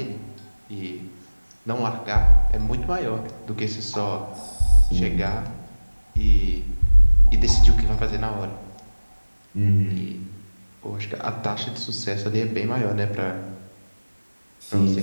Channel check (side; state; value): both; inverted; correlation -1.00